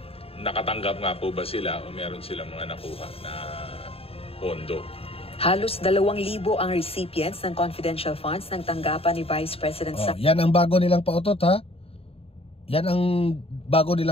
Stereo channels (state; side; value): late; right; 0.28 ms